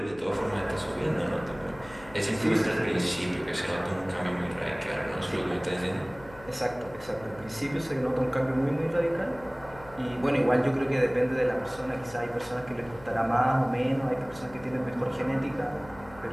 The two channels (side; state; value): left; noise; hum, 20 dB below the sound